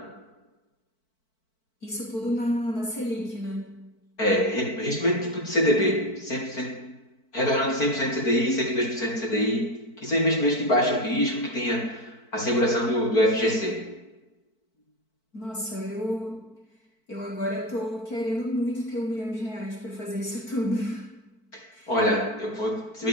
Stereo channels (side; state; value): right; late; 4.5 ms